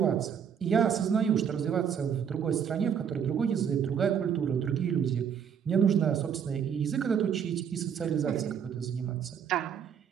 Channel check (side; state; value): left; quieter; 7.9 dB